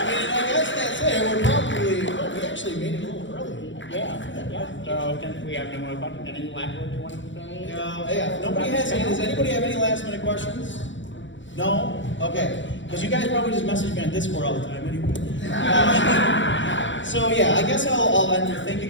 mean, I guess that's it. We're probably, we actually made it a little early. Yeah. So since we have no more questions, any last words you want to say? Yeah, nobody has any, does anybody have any last minute questions? No? Okay. Because you guys probably just message me on Discord all the time anyway. So yeah, I guess I'll end with thank you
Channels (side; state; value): right; late; 0.54 ms